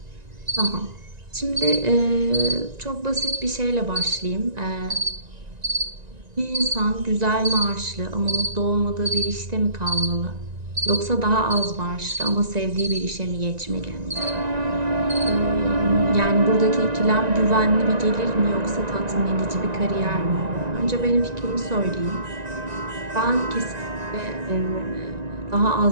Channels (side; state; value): left; late; 1.9 ms